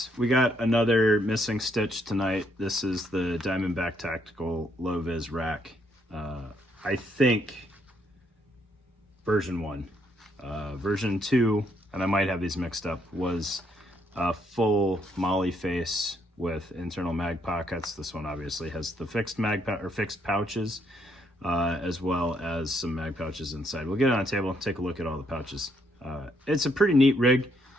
we got another missing stitch tonight. This is the Diamondback Tactical Low Vis rack. I think version 1. Version 2, and I might have these mixed up, was a full molly face with internal mag pockets. This one obviously has the fixed fixed pouches, as well as some mag pouches inside. We'll get it on the table and take a look at all the pouches. It's a pretty neat rig.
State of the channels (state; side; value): normal; both; correlation 0.72